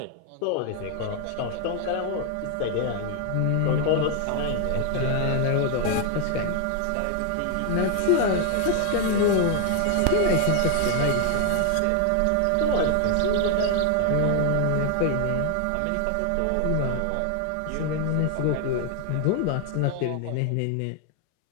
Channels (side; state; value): both; different; correlation 0.00